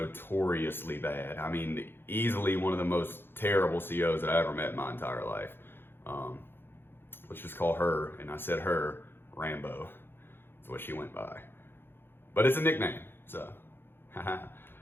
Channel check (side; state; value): right; late; 0.10 ms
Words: bad. I mean, easily one of the most terrible COs that I ever met in my entire life. Let's just call her, and I said her, Rambo. That's what she went by. But it's a nickname, so.